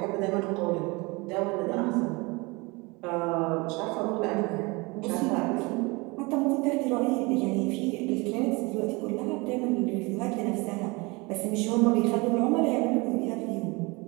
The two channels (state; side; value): quieter; left; 26.0 dB